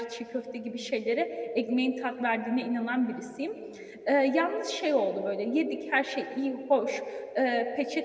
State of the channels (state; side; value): identical; both; correlation 1.00